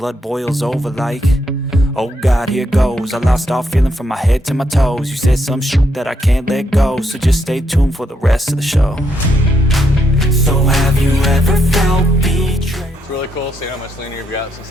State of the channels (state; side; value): normal; both; correlation 0.77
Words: boils over like, oh God, here goes. I lost all feeling from my head to my toes. You said some shit that I can't let go, so just stay tuned for the rest of the show. So have you ever felt betrayed? It's really cool seeing how much leaner you've got since